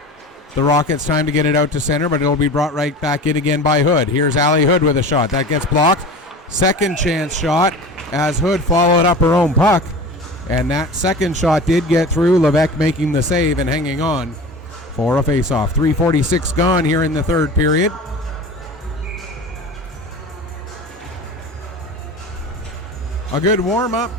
the Rockets time to get it out to center, but it'll be brought right back in again by Hood. Here's Allie Hood with a shot. That gets blocked. Second chance shot as Hood followed up her own puck, and that second shot did get through. Levesque making the save and hanging on for a faceoff. 3:46 gone here in the third period. A good warm-up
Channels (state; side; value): normal; both; correlation 0.35